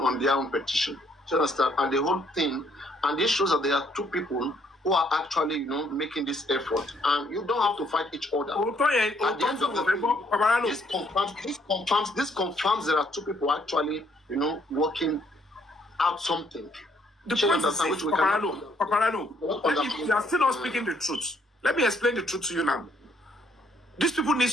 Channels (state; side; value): normal; both; correlation 0.68